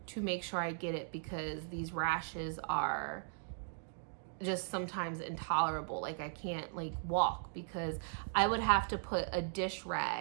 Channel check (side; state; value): left; silent; digital silence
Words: to make sure I get it, because these rashes are just sometimes intolerable. Like I can't like walk, because I would have to put a dish